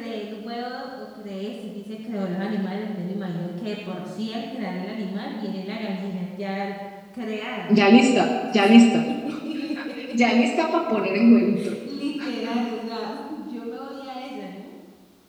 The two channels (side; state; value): both; identical; correlation 1.00